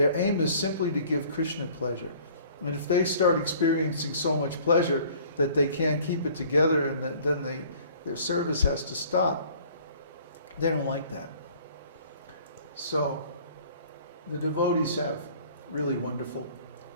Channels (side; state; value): both; inverted; correlation -0.52